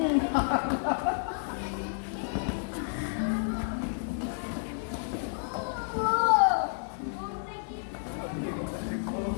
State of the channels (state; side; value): silent; right; digital silence